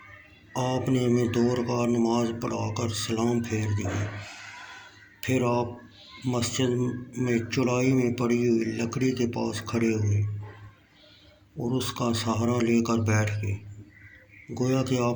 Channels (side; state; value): both; identical; correlation 1.00